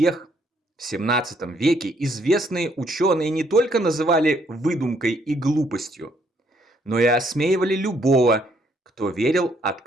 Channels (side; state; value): both; normal; correlation 0.69